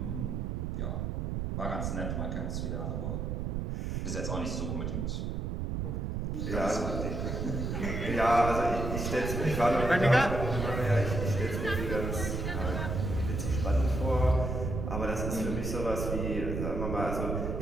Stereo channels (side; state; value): right; noise; rumble, 2 dB below the sound